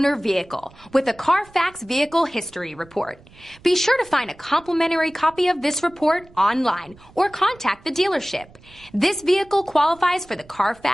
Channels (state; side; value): noise; right; rumble, 25 dB below the sound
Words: vehicle with a Carfax Vehicle History Report. Be sure to find a complimentary copy of this report online or contact the dealership. This vehicle qualifies for the